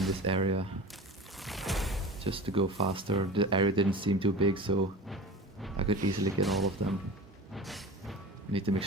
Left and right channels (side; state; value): both; normal; correlation 0.34